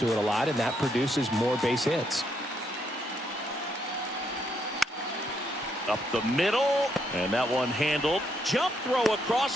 it a lot, and that produces more base hits. Up the middle, and that one handled. Jump throw across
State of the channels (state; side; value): normal; both; correlation 0.75